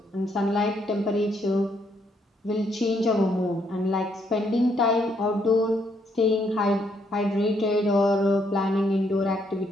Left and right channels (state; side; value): normal; both; correlation 0.72